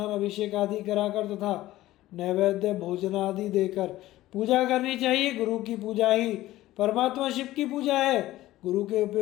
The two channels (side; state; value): right; quieter; 15.8 dB